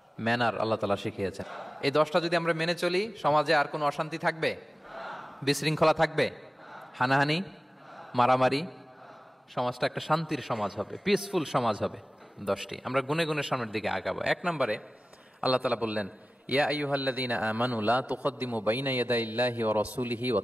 ম্যানার আল্লাহ তাআলা শিখিয়েছেন। এই 10টা যদি আমরা মেনে চলি, সমাজে আর কোনো অশান্তি থাকবে? বিশৃঙ্খলা থাকবে? হানাহানি, মারামারি? সমাজটা একটা শান্তির সমাজ হবে, পিসফুল সমাজ হবে। 10টি আমরা গুনে গুনে সামনের দিকে আগাবো। 1 নম্বরে আল্লাহ তাআলা বললেন, ইয়া আইয়ুহাল্লাযীনা আমানু লা তুকদ্দিমু বাইনা ইয়াদাইল্লাহি ওয়া রাসূলিহি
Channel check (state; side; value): normal; both; correlation 0.96